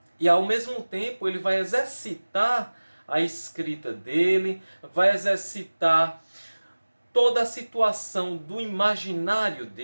E ao mesmo tempo ele vai exercitar a escrita dele, vai exercitar toda a situação do imaginário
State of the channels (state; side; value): inverted; both; correlation -1.00